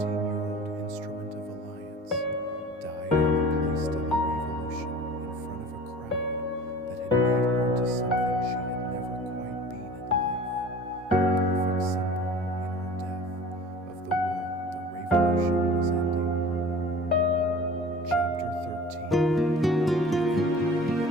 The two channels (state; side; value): normal; both; correlation 0.42